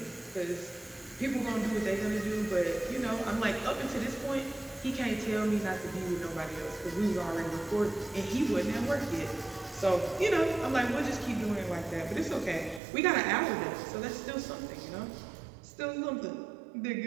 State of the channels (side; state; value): left; drops out; at 12.8 s